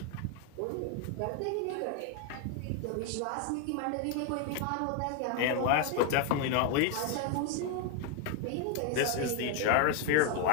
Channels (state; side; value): different; both; correlation 0.01